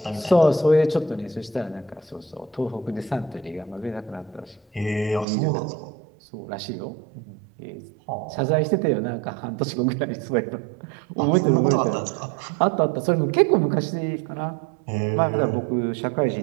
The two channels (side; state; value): left; drops out; at 5.2 s